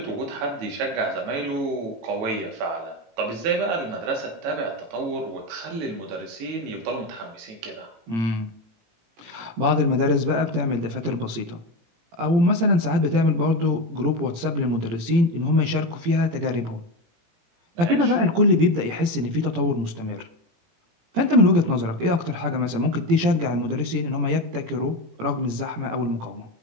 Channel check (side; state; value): left; late; 18 ms